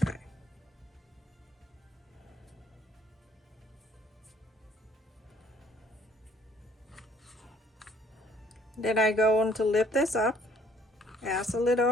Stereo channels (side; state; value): both; normal; correlation 0.61